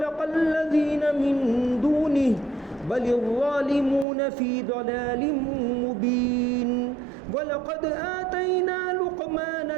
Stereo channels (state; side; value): drops out; left; at 4.0 s